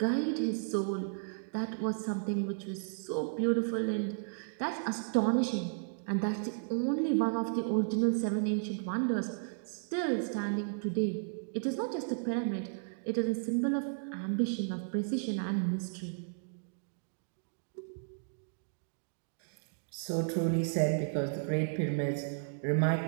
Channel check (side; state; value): left; silent; digital silence